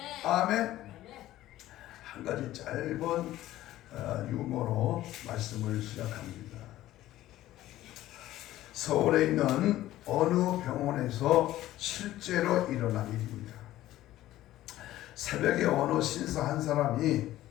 아멘. 한 가지 짧은 유머로 말씀을 시작합니다. 서울에 있는 어느 병원에서 실제로 일어난 일입니다. 새벽에 어느 신사 한 사람이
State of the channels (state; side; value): quieter; right; 14.7 dB